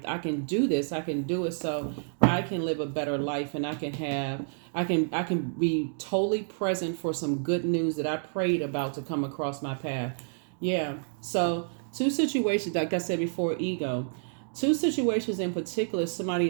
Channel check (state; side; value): silent; left; digital silence